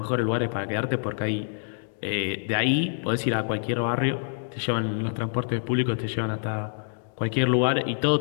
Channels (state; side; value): silent; right; digital silence